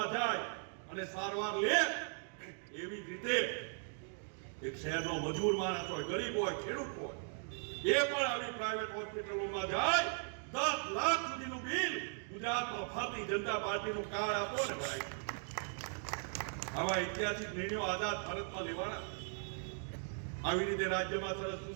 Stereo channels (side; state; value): left; silent; 52 dB below the other